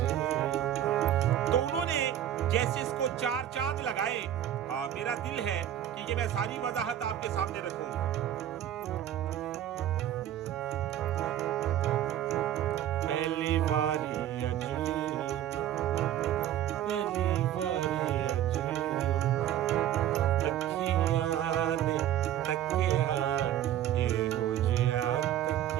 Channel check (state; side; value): quieter; left; 11.5 dB